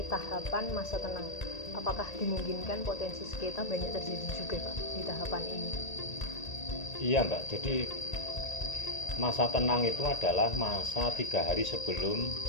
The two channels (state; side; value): late; right; 1.8 ms